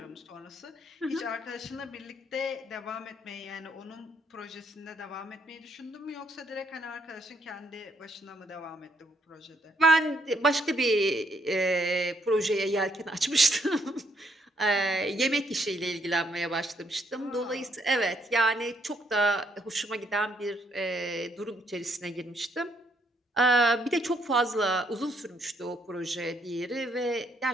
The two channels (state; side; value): normal; both; correlation 0.71